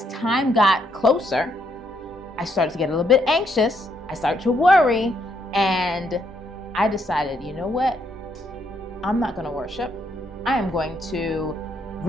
time got closer, I started to get a little bit anxious. I started to worry, and I decided, you know what? I'm not going to worship. I am going to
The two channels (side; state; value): both; normal; correlation 0.74